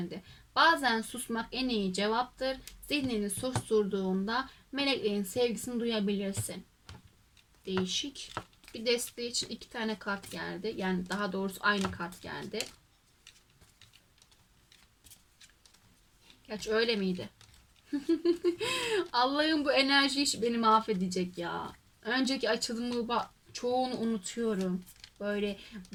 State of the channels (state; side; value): identical; both; correlation 1.00